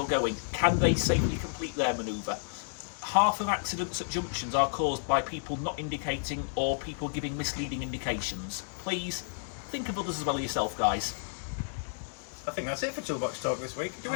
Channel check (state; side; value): silent; right; digital silence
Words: going? Can they safely complete their manoeuvre? Half of accidents at junctions are caused by people not indicating or people giving misleading indications. Please, think of others as well as yourself, guys. I think that's it for Toolbox Talk this week. Do